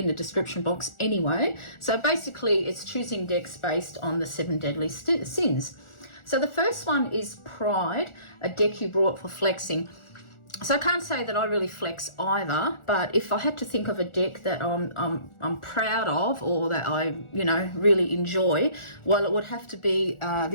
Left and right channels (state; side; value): late; right; 1.4 ms